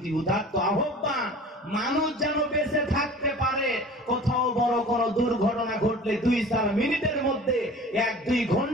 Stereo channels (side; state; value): both; normal; correlation 0.42